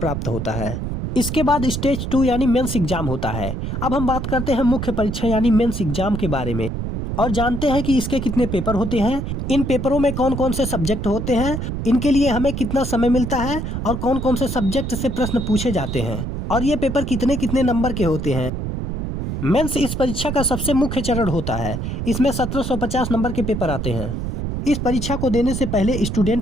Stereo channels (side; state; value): right; noise; rumble, 4 dB below the sound